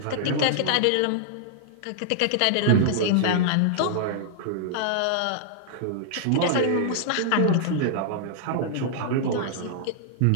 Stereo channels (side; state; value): both; different; correlation -0.01